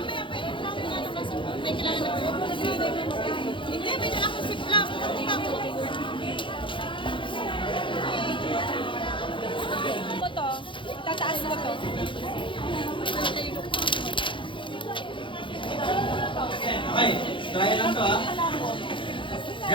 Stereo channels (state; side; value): late; right; 0.24 ms